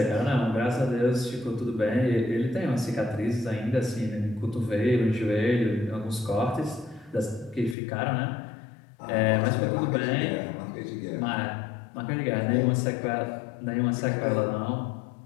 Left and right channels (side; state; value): right; drops out; at 7.8 s